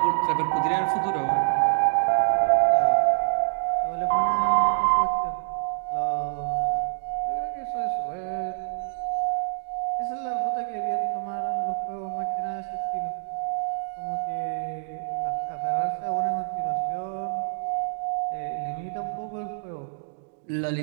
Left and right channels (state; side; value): silent; left; digital silence